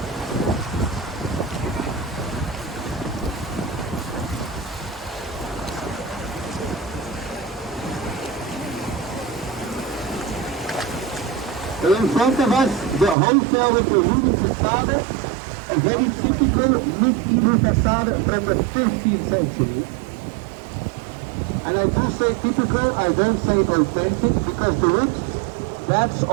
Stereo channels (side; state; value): left; drops out; at 13.2 s